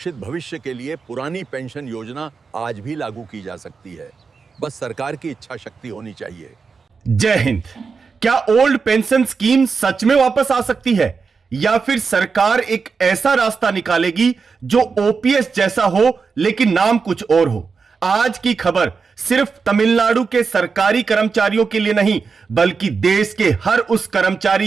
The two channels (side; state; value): left; quieter; 5.1 dB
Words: भविष्य के लिए पुरानी पेंशन योजना आज भी लागू की जा सकती है। बस सरकार की इच्छा शक्ति होनी चाहिए। जय हिंद। क्या ओल्ड पेंशन स्कीम सच में वापस आ सकती है या फिर सरकार एक ऐसा रास्ता निकालेगी जो ओपीएस जैसा हो लेकिन नाम कुछ और हो? आज की खबर सिर्फ तमिलनाडु के सरकारी कर्मचारियों के लिए नहीं बल्कि देश के हर उस